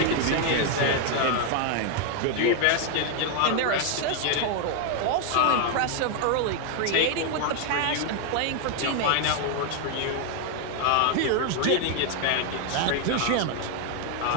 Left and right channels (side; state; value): both; different; correlation 0.01